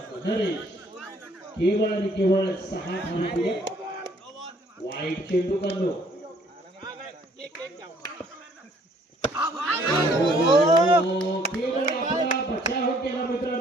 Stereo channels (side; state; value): both; normal; correlation 0.62